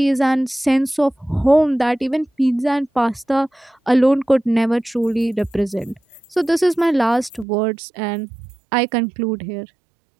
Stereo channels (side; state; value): left; drops out; at 7.5 s